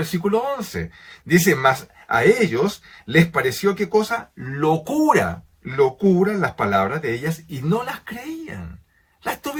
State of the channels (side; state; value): both; identical; correlation 1.00